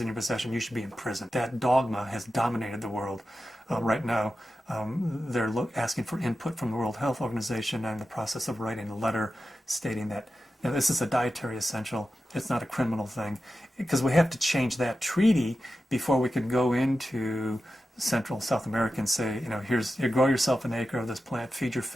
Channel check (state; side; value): normal; both; correlation 0.92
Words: in your possession, you should be in prison. That dogma has dominated the world right now. They're asking for input from the World Health Organization, and in the process of writing a letter stating that this is a dietary essential, it's not a criminal thing, because we have to change that treaty before we can go into Central South America and say, you grow yourself an acre of this plant, feed your